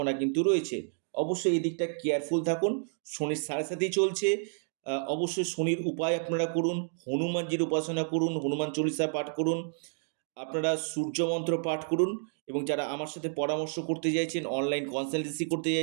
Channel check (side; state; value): left; silent; digital silence